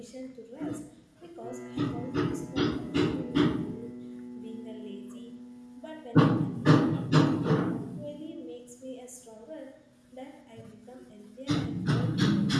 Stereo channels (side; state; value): both; identical; correlation 1.00